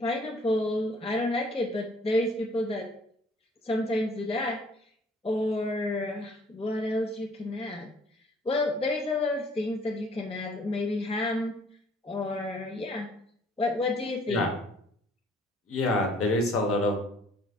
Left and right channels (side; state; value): both; normal; correlation 0.58